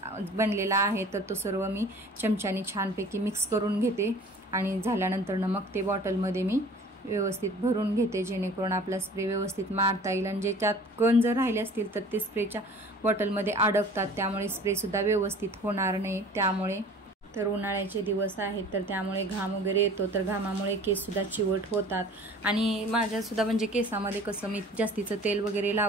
बनलेला आहे तर तो सर्व मी चमच्याने छानपैकी मिक्स करून घेते, आणि झाल्यानंतर ना मग ते बॉटलमध्ये मी व्यवस्थित भरून घेते, जेणेकरून आपला स्प्रे व्यवस्थित मारता येईल। आणि ज्याच्यात कण जर राहिले असतील तर ते स्प्रेच्या बॉटलमध्ये अडकतात, त्यामुळे स्प्रेसुद्धा व्यवस्थित होणार नाही। त्यामुळे तर उन्हाळ्याचे दिवस आहेत तर त्यामुळे घाम वगैरे येतो, तर घामामुळे केससुद्धा चिवट होतात। आणि माझ्यासुद्धा म्हणजे केसामध्ये कसं मी जास्तीचं तेल वगैरे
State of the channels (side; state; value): both; normal; correlation 0.46